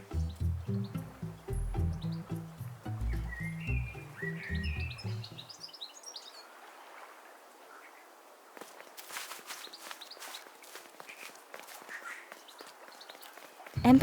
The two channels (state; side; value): identical; both; correlation 1.00